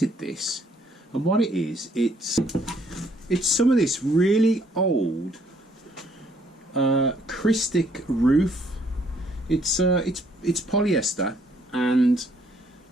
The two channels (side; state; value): both; normal; correlation 0.66